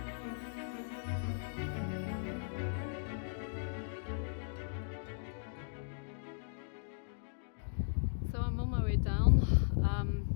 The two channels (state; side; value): silent; right; digital silence